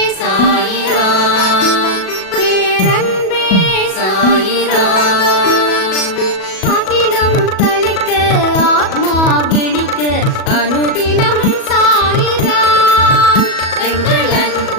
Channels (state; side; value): late; right; 37 ms